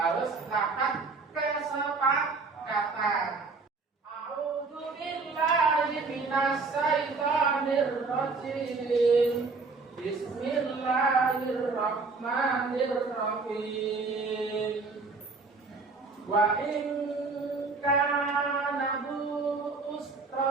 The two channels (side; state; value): left; quieter; 4.1 dB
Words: dapat kesepakatan. A'udzu billahi minasy syaithanir rajim. Bismillahirrahmanirrahim. Wa in kana bu